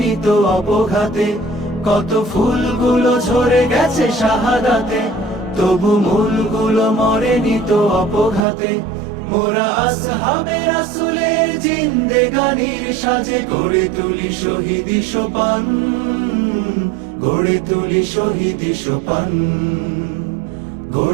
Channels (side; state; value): left; drops out; at 8.5 s